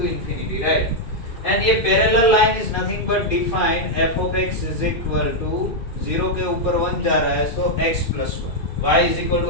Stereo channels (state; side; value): late; right; 2.5 ms